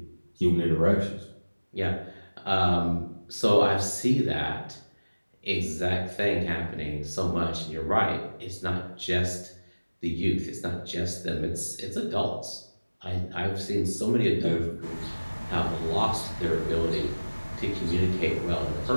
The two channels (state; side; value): inverted; both; correlation -1.00